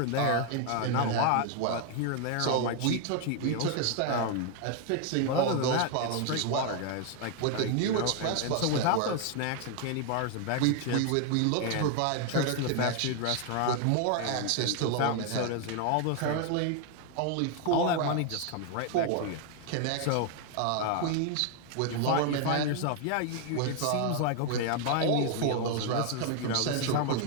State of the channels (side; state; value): both; different; correlation 0.00